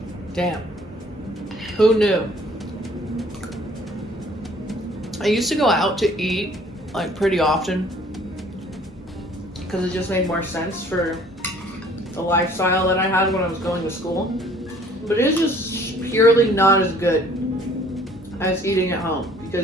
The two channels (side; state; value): both; normal; correlation 0.56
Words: damn. Who knew? I used to go out to eat like pretty often because it just made more sense for the lifestyle that I had when I was going to school. But it's just purely not as good as eating at home,